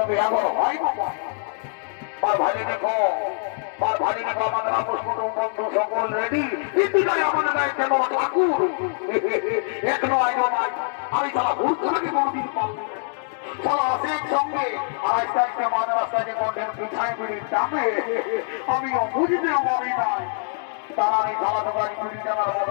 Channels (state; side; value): silent; right; digital silence